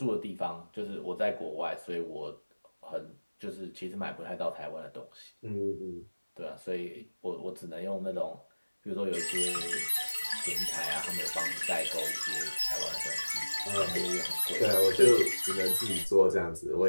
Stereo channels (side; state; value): both; inverted; correlation -1.00